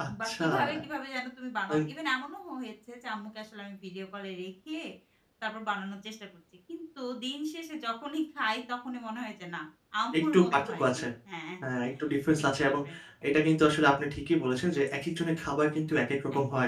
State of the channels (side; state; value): both; identical; correlation 1.00